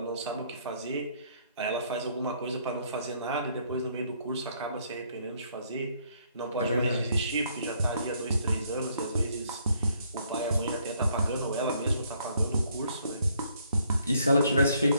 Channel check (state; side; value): inverted; both; correlation -0.68